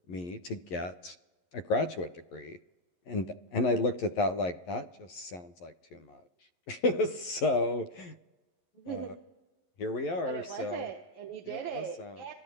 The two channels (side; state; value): right; late; 11 ms